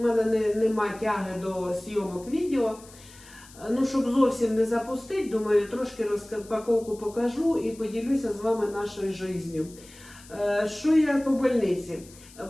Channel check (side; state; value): left; noise; hiss, 22 dB below the sound